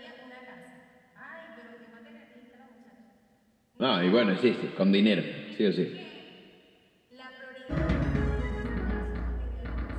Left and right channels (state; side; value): identical; both; correlation 1.00